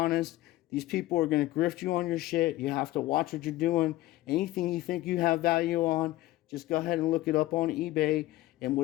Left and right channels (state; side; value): quieter; right; 16.7 dB